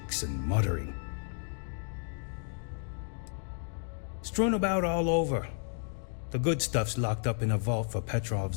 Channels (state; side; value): silent; right; 56 dB below the other